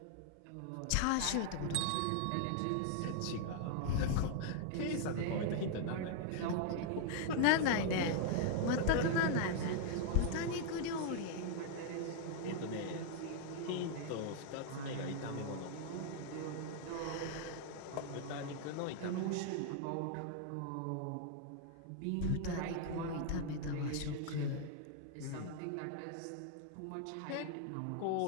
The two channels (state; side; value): different; both; correlation 0.00